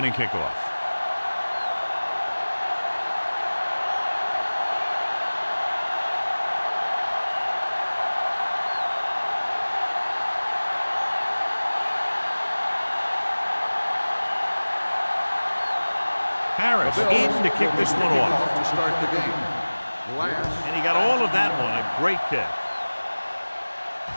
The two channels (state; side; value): inverted; both; correlation -1.00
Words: kickoff. Harris in to kick this one off. To start the game. And he got all of that one. A great kick.